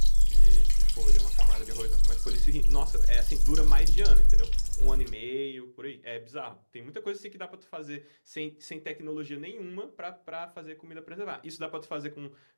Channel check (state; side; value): inverted; both; correlation -1.00